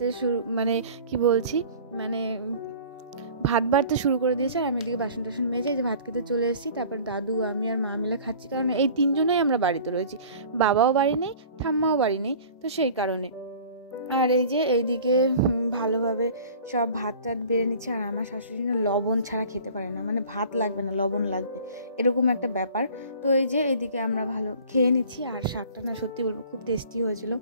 শুরু ভাত বাড়তে শুরু করে দিয়েছে। আর আমি এদিকে বাসন টাসন মেজে যে ভাত খেতে চলে এসেছি। তারপর দাদু, আমি আর মা মিলে খাচ্ছি, কারণ এই 3 জনেই আমরা বাড়িতে রয়েছি, বাবাও বাড়ি নেই, ঠাম্মাও বাড়ি নেই, তো সেই কারণে। আর এই যে এইদিকে ভালোভাবে সব ভাত টাত বেড়ে নিচ্ছে। আর আমার শাশুড়ি না লবণ ছাড়া খেতে পারে না, মানে ভাত লাগবে না লবণ লাগবে, এরকম একটা ব্যাপার। তো এই যে এইদিকে আমরা ভালো খেয়ে নিচ্ছি। আর শাকটা না সত্যি বলবো খুব টেস্টি হয়েছিল।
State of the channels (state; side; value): inverted; both; correlation -0.45